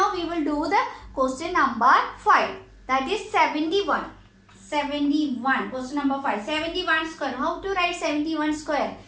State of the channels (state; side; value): identical; both; correlation 1.00